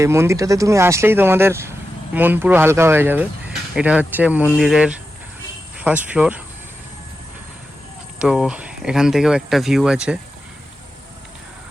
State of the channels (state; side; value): normal; both; correlation 0.90